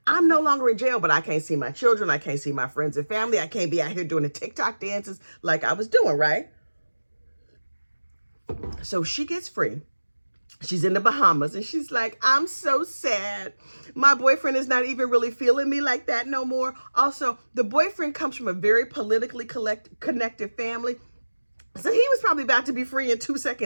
I'm no longer in jail, but I can't see my children. I can't see my friends and family. I can't be out here doing the TikTok dances like I was doing, right? So she gets free. She's in the Bahamas and she's like, I'm so sad. My boyfriend is not even really feeling me like that no more. Also, the boyfriend comes from a very politically connected family. So he was probably about to be free in 2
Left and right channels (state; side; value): inverted; both; correlation -1.00